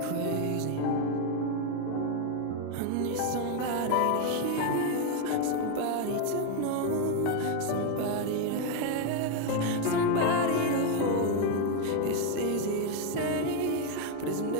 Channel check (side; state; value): both; different; correlation 0.01